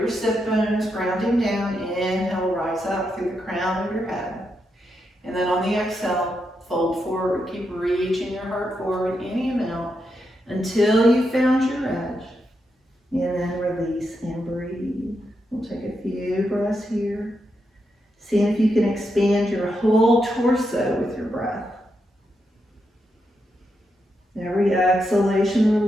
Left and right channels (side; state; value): both; normal; correlation 0.83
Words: sit bones grounding down. Inhale, rise up through the crown of your head. And then on the exhale, fold forward. Keep reaching your heart forward any amount until you found your edge. And then release and breathe. We'll take a few breaths here. See if you can expand your whole torso with your breath. Every